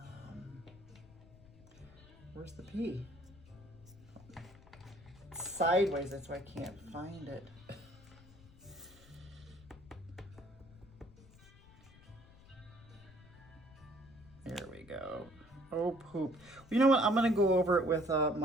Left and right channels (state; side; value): noise; left; rumble, 22 dB below the sound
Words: the P? It's sideways, that's why I can't find it. There we go. Oh, poop. You know what? I'm going to go over it with